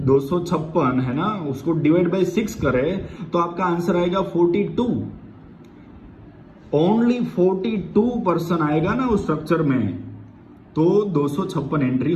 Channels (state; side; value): identical; both; correlation 1.00